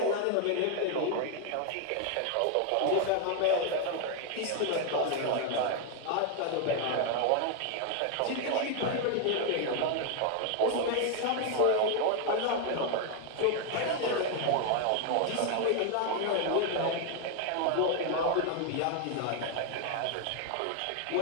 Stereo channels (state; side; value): different; both; correlation 0.01